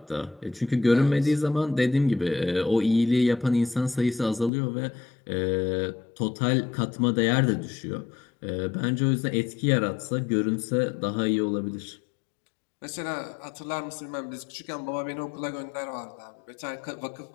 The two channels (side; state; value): right; drops out; at 4.5 s